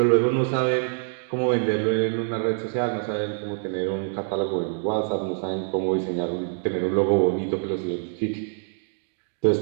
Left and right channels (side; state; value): left; silent; digital silence